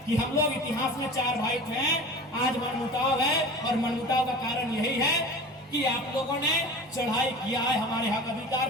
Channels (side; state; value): both; normal; correlation 0.36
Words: कि हम लोग इतिहास में 4 भाई थे, आज मनमुटाव है, और मनमुटाव का कारण यही है कि आप लोगों ने चढ़ाई किया है हमारे हक अधिकार